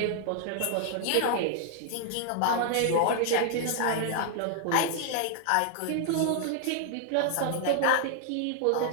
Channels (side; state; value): both; different; correlation 0.00